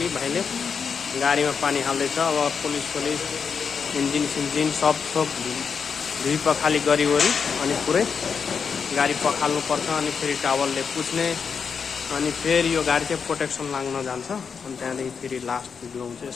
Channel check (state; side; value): quieter; right; 6.2 dB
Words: भाइले गाडीमा पानी हाल्दैछ। अब पुलिस इन्जिन सब धुई पखाली गरिवरी अनि पुरै गाडी पखाल्नुपर्छ। अनि फेरि टावलले पुछ्ने अनि फेरि यो गाडी चाहिँ प्रोटेक्सन लाग्न जान्छ। अनि त्यहाँदेखि फेरि लास्ट भिडियो हुन्छ